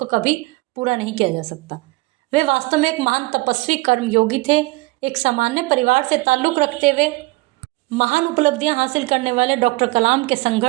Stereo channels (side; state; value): left; quieter; 22.9 dB